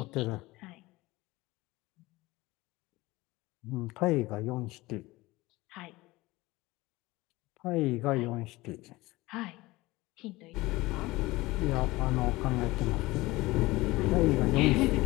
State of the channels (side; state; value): right; quieter; 20.2 dB